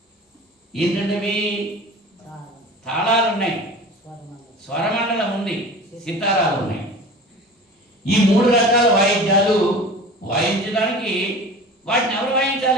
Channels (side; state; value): both; normal; correlation 0.38